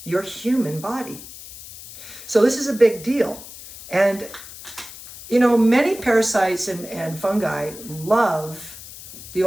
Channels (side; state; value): left; noise; hiss, 15 dB below the sound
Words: your human body? So this is a big deal. And, many parasites and fungi love the